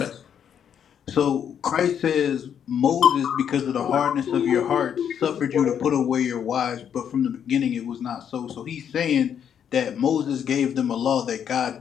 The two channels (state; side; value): quieter; right; 8.5 dB